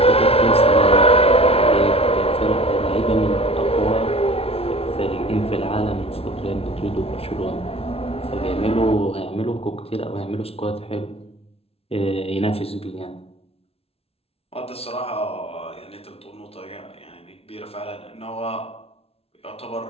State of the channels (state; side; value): late; right; 0.29 ms